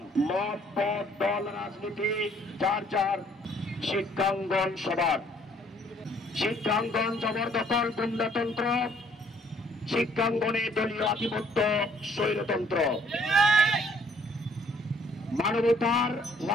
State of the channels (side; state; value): both; normal; correlation 0.62